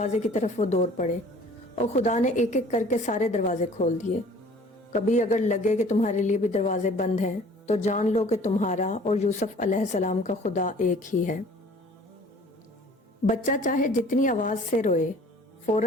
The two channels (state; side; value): normal; both; correlation 0.50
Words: की तरफ वो दौड़ पड़े और खुदा ने एक एक करके सारे दरवाजे खोल दिए। कभी अगर लगे कि तुम्हारे लिए भी दरवाजे बंद हैं तो जान लो कि तुम्हारा और यूसुफ अलैहिस्सलाम का खुदा एक ही है। बच्चा चाहे जितनी आवाज से रोए,